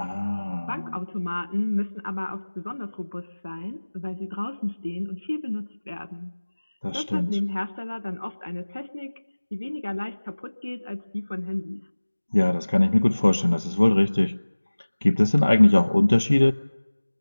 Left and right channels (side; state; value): both; inverted; correlation -1.00